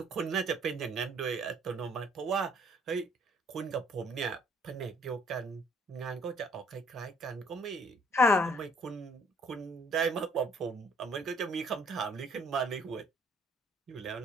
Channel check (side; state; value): both; normal; correlation 0.62